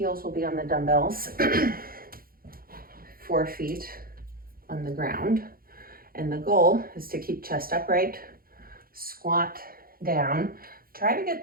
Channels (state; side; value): late; left; 0.42 ms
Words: will be on the dumbbells, 4 feet on the ground. And the goal is to keep chest upright, squat down. Try to get